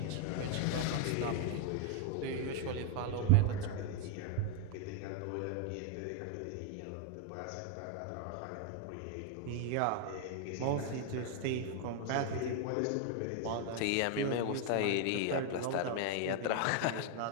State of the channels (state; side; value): different; both; correlation 0.00